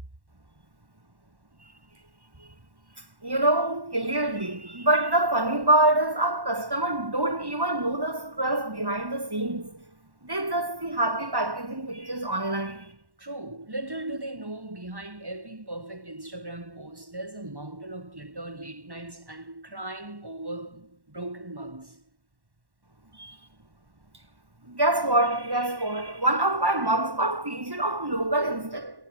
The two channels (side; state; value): left; late; 1.1 ms